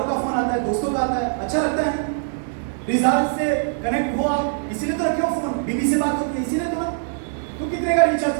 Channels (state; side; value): silent; left; 64 dB below the other